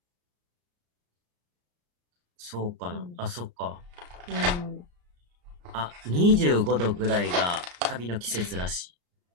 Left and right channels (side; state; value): left; late; 34 ms